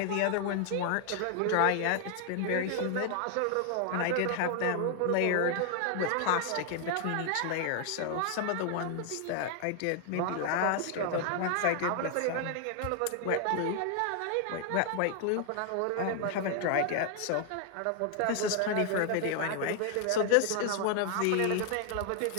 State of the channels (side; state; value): both; different; correlation 0.00